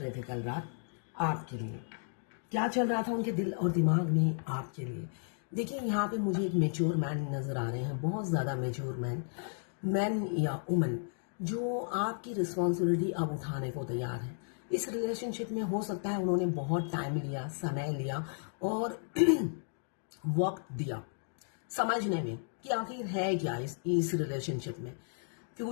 थे कल रात आपके लिए, क्या चल रहा था उनके दिल और दिमाग में आपके लिए। देखिए यहाँ पे मुझे एक मेच्योर मैन नजर आ रहे हैं, बहुत ज़्यादा मेच्योर मैन या वुमन जो आपकी रिस्पॉन्सिबिलिटी अब उठाने को तैयार है। इस रिलेशनशिप में हो सकता है उन्होंने बहुत टाइम लिया, समय लिया और वक्त दिया समझने में कि आखिर है क्या इस रिलेशनशिप में,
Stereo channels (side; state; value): right; silent; digital silence